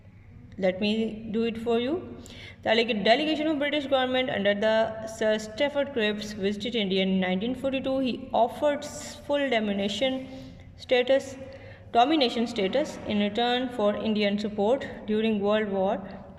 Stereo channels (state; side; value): identical; both; correlation 1.00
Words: let me do it for you. The delegation of British government under the Sir Stafford Cripps visited India in 1942. He offered full domination status in return for Indian support during World War